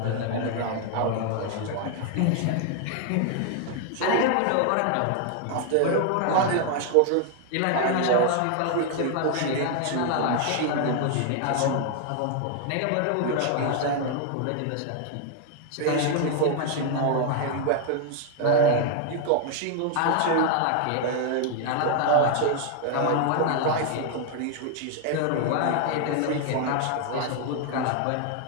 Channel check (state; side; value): different; both; correlation 0.00